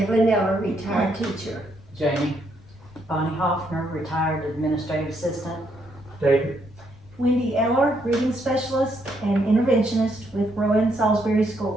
Eller, retired teacher. Jamie. Bonnie Hoffner, retired administrative assistant. David. Wendy Eller, reading specialist and interventionist with Rowan Salisbury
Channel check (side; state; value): left; noise; rumble, 26 dB below the sound